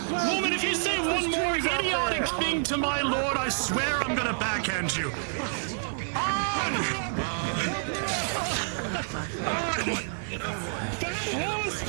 Woman, if you say one more idiotic thing to my lord, I swear I'm gonna backhand you. Fat horse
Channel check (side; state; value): left; silent; digital silence